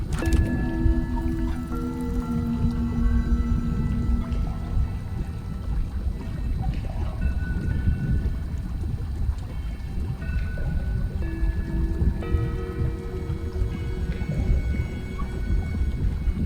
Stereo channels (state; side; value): identical; both; correlation 1.00